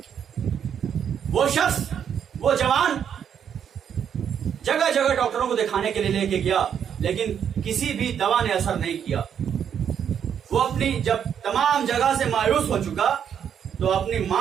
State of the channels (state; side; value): quieter; left; 8.4 dB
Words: وہ شخص, وہ جوان جگہ جگہ ڈاکٹروں کو دکھانے کے لیے لے کے گیا, لیکن کسی بھی دوا نے اثر نہیں کیا. وہ اپنی جب تمام جگہ سے مایوس ہو چکا تو اپنی